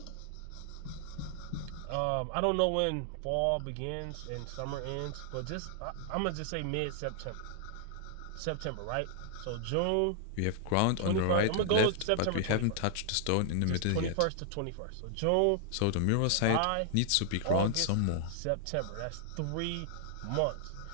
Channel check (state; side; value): different; both; correlation 0.00